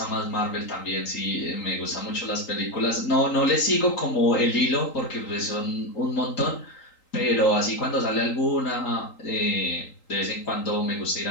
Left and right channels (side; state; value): right; late; 3.8 ms